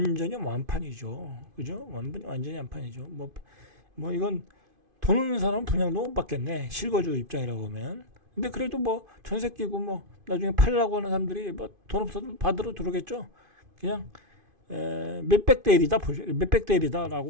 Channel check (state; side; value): late; left; 2.5 ms